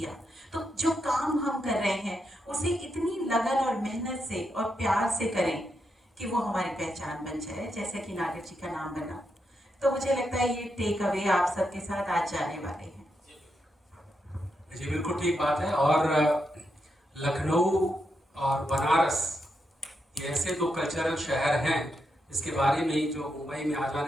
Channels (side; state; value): both; normal; correlation 0.83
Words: तो जो काम हम कर रहे हैं उसे इतनी लगन और मेहनत से और प्यार से करें कि वो हमारी पहचान बन जाए, जैसे कि नागर जी का नाम बना। तो मुझे लगता है ये टेक अवे आप सबके साथ आज जाने वाले हैं। जी बिल्कुल ठीक बात है। और लखनऊ और बनारस ये ऐसे दो कल्चरल शहर हैं जिसके बारे में ही जो मुंबई में आ